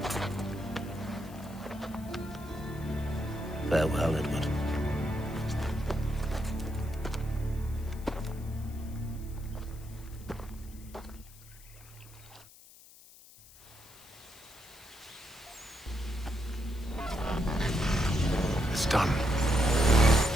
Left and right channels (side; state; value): left; noise; hiss, 21 dB below the sound